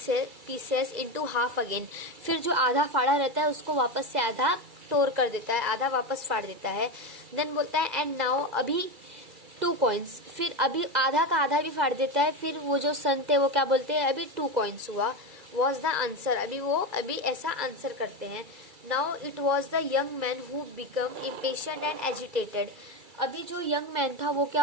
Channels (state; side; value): late; left; 2.3 ms